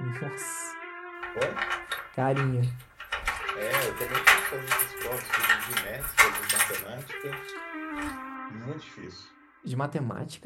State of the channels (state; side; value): identical; both; correlation 1.00